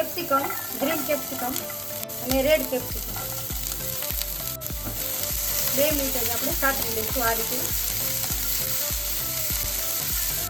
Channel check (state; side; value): normal; both; correlation 0.94